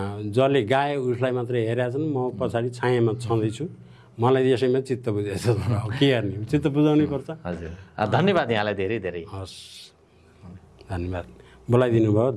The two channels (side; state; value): both; identical; correlation 1.00